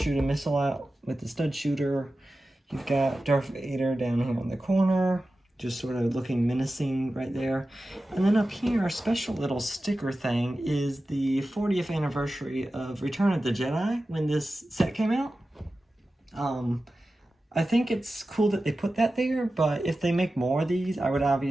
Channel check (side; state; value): both; normal; correlation 0.94